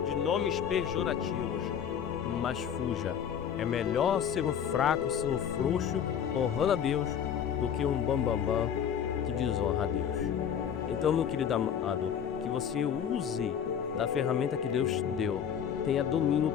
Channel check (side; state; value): right; quieter; 8.4 dB